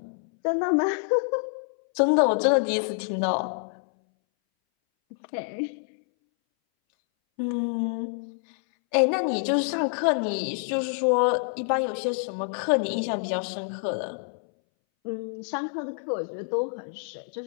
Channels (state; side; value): silent; right; 60 dB below the other